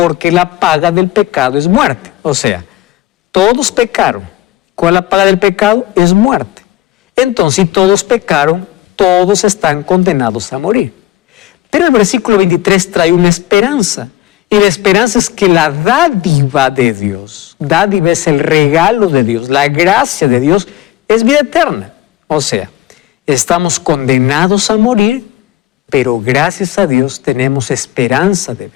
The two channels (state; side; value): quieter; right; 15.2 dB